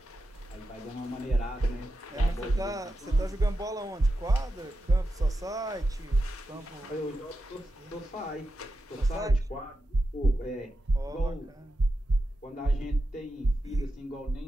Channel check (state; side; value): normal; both; correlation 0.90